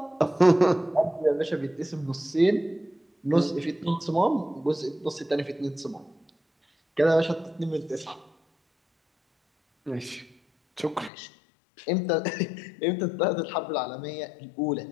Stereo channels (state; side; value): drops out; right; at 11.1 s